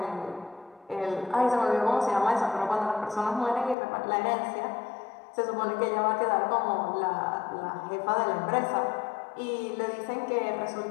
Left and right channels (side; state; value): right; drops out; at 3.8 s